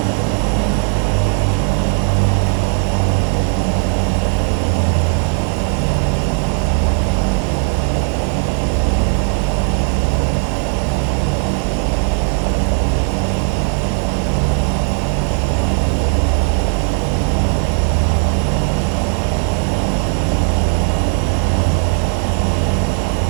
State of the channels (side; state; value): left; quieter; 39.4 dB